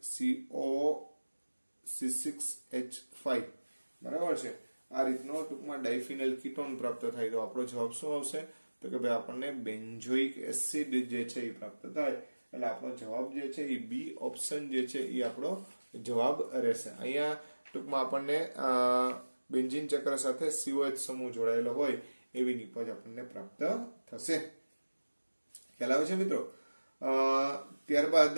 C6H5 બરાબર છે. આ રીતનો ટૂંકમાં ડાયફિનાઇલ કીટોન પ્રાપ્ત થાય. તો આપણો જવાબ શું આવશે? તો કે ભાઈ આપણને બેન્ઝોઇક એસિડ જે છે એ પ્રાપ્ત થાય. એટલે આપણો જવાબ જે છે એ બી ઓપ્શન જે છે એ આપણો જવાબ રહેશે. અહીંયા ટૂંકમાં આપણને બેન્ઝીન ચક્ર સાથે COH સમૂહ જોડાયેલો હોય એવી નિપજ આપણને પ્રાપ્ત થશે. ખ્યાલ આવે છે મિત્રો? ત્યારબાદ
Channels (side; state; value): both; inverted; correlation -1.00